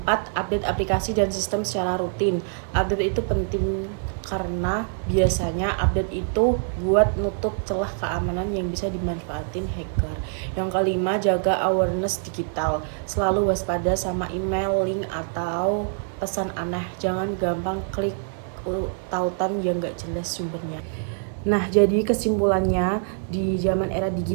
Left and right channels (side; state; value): left; silent; 58 dB below the other